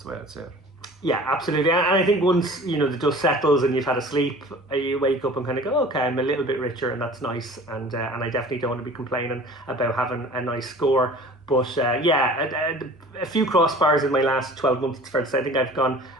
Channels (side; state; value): both; normal; correlation 0.44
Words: the way I'd say it. Yeah, absolutely. And I think once the dust settles and you've had a sleep, you wake up and kind of go, okay, I'm a little bit richer, and that's nice. And I definitely don't want to be complaining about having a nice score. But a few crossbars in my last 12 months, it's fair to say. I think I've gone